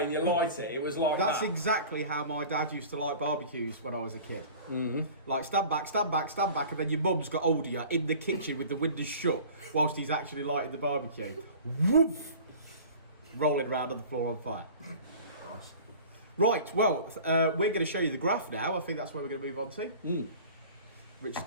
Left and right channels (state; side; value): inverted; both; correlation -0.42